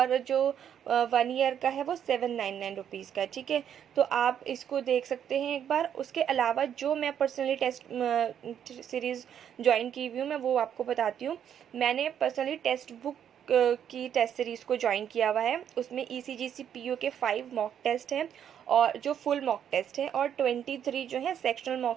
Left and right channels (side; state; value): left; quieter; 9.1 dB